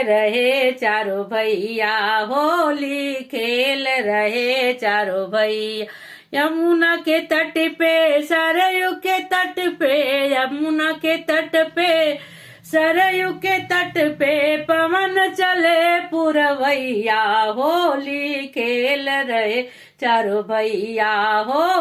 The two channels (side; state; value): both; identical; correlation 1.00